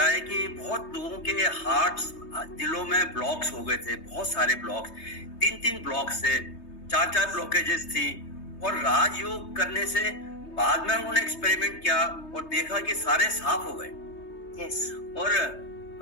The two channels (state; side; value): late; right; 3.2 ms